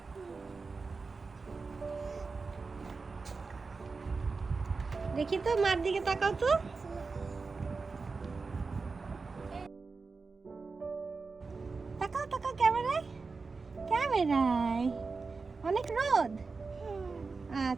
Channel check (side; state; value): left; quieter; 4.4 dB